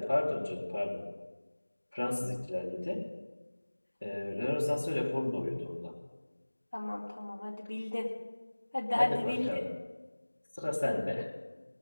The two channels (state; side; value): inverted; both; correlation -1.00